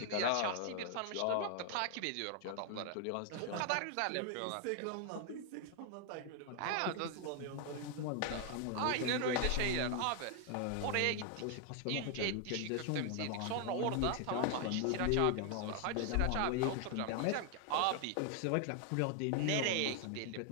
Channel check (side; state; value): both; different; correlation 0.00